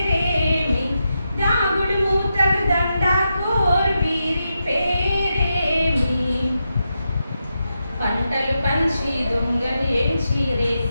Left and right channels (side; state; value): both; inverted; correlation -0.86